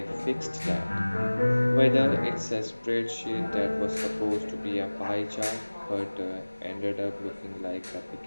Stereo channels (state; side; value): inverted; both; correlation -1.00